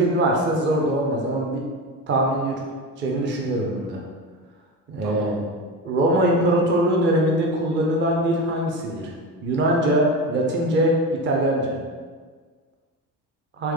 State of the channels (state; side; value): normal; both; correlation 0.23